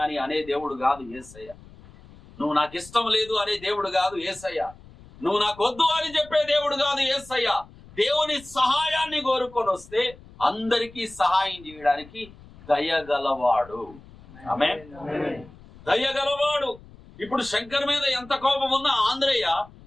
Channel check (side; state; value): left; noise; rumble, 22 dB below the sound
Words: అని అనే దేవుడు కాదు యేసయ్య. నువ్వు నాకు ఇష్టం లేదు అనే దేవుడు కాదు యేసయ్య. నువ్వు నాకు వద్దు అని చెప్పే దేవుడు కాదు యేసయ్య. దేవుని సహాయాన్ని కోరుకొని వస్తే అందరికీ సహాయం చేయడానికి దయగలవాడు. ఆమేన్. దయగలవాడు. ఇప్పుడు శంకర్ మీద ఎంత కోపం ఉన్నా ఆంధ్రయ్య